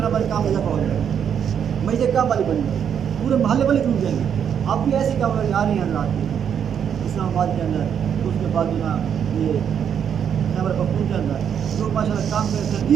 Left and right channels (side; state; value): left; quieter; 8.2 dB